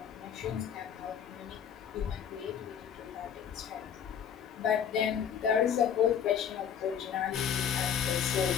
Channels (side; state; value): right; quieter; 8.3 dB